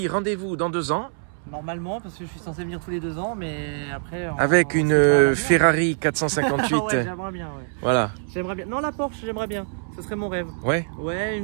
rendez-vous dans 2 ans. Normalement, parce que je suis censé venir tous les 2 ans, mais après... Avec une Ferrari 458. Ouais, j'aimerais bien, ouais. Voilà. J'aimerais bien. Non, la Porsche, j'aimerais bien. Ce serait mon rêve. Ouais. Ouais,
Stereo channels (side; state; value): left; silent; 62 dB below the other